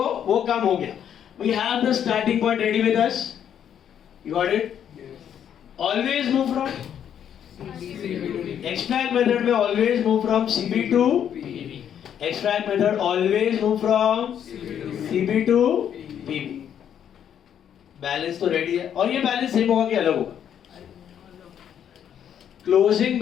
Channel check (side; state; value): right; quieter; 9.2 dB